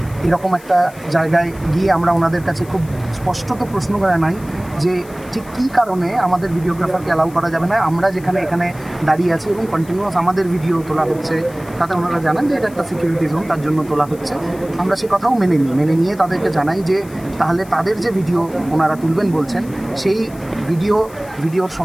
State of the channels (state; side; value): noise; left; hiss, 23 dB below the sound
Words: এরকম একটা জায়গায় গিয়ে আমরা ওনাদের কাছে খুব স্পষ্টত প্রশ্ন করা নাই যে ঠিক কী কারণে আমাদের ভিডিওগ্রাফারকে অ্যালাউ করা যাবে না। আমরা যেখানে এখানে দাঁড়িয়ে আছি এবং কন্টিনিউয়াস আমাদের ভিডিও তোলা হচ্ছে, তাতে ওনারা জানান যে এটা একটা সিকিউরিটি জোন, তার জন্য তোলা হচ্ছে। আমরা সে কথাও মেনে নিয়ে তাদেরকে জানাই যে তাহলে তাদের যে ভিডিও ওনারা তুলবেন বলছেন সেই ভিডিওর